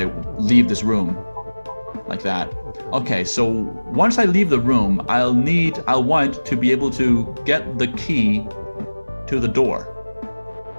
leave this room, like that. Okay, so once I leave the room, I'll want to be able to get the key to the door.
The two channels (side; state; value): both; inverted; correlation -1.00